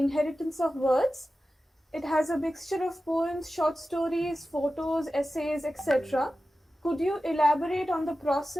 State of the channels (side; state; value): both; normal; correlation 0.94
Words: of Words. It has a mixture of poems, short stories, photos, essays, etc. Could you elaborate on the